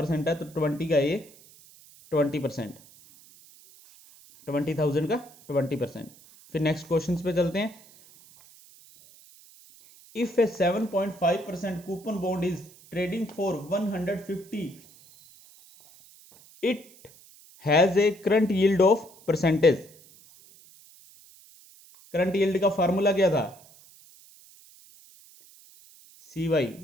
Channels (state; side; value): noise; right; hiss, 24 dB below the sound